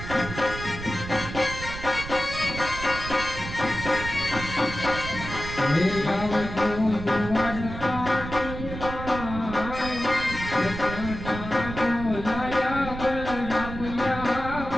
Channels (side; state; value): right; noise; rumble, 9 dB below the sound